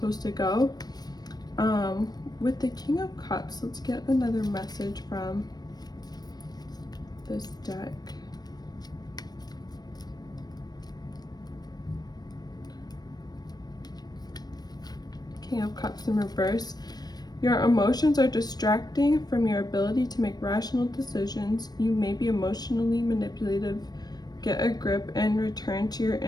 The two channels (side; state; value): right; late; 0.19 ms